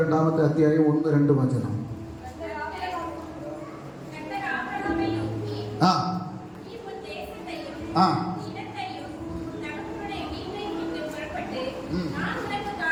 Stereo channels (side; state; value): both; identical; correlation 1.00